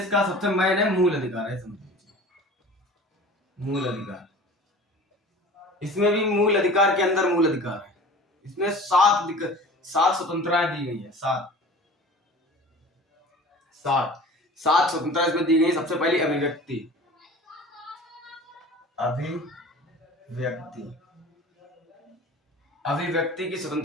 का सबसे मेन है मूल अधिकार है, समझ लीजिए। मूल अधिकार, इसमें भी मूल अधिकार के अंदर मूल अधिकार है। इसमें 7 स्वतंत्रताएं दी गई है। सात स्वतंत्रता इसमें दी गई। सबसे पहली अभिव्यक्ति। अभिव्यक्ति की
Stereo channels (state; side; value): normal; both; correlation 0.41